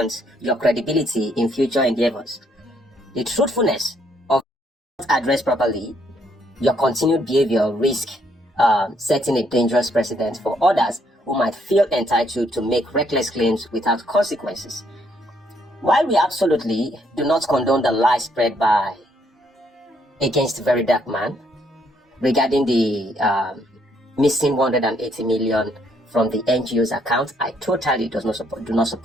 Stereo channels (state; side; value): normal; both; correlation 0.70